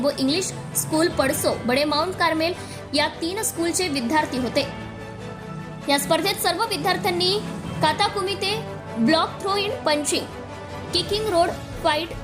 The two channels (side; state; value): both; identical; correlation 1.00